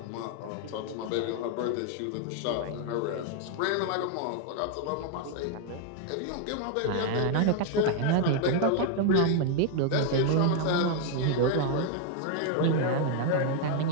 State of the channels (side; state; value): both; different; correlation 0.00